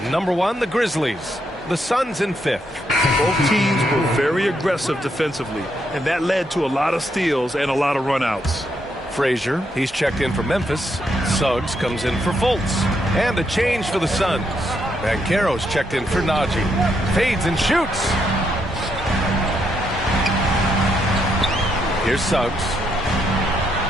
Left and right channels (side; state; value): both; normal; correlation 0.77